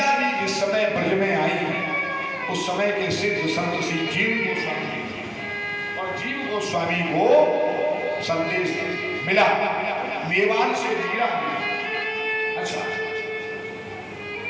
जी जिस समय ब्रज में आई उस समय के सिद्ध संत श्री जीव गोस्वामी और जीव गोस्वामी को संदेश मिला मेवाड़ से मीरा। अच्छा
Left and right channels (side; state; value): both; identical; correlation 1.00